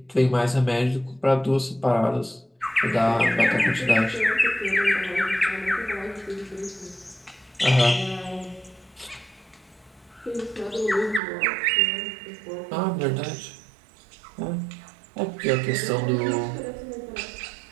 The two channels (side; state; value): left; drops out; at 11.2 s